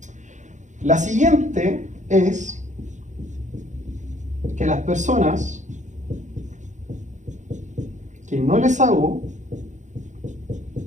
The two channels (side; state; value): left; late; 0.35 ms